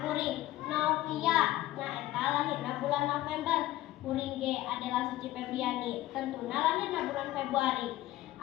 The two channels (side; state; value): right; quieter; 15.8 dB